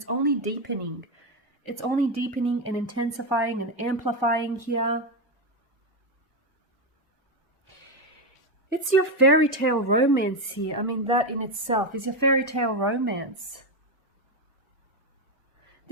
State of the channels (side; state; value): both; normal; correlation 0.09